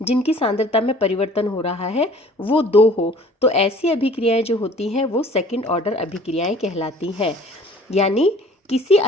जिनकी सांद्रता में परिवर्तन हो रहा है वो 2 हो, तो ऐसी अभिक्रियाएं जो होती हैं वो सेकंड ऑर्डर अभिक्रियाएं कहलाती हैं। यानी किसी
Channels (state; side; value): normal; both; correlation 0.50